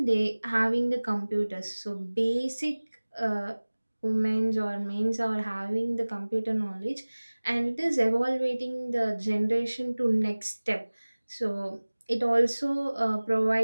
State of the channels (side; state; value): both; inverted; correlation -1.00